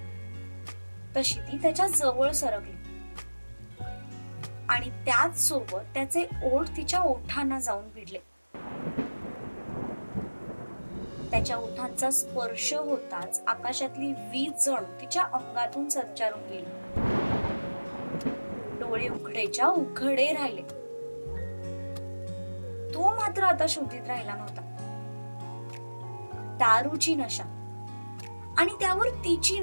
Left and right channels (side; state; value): both; inverted; correlation -1.00